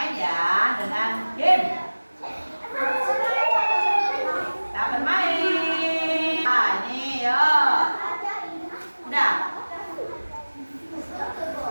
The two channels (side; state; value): both; inverted; correlation -1.00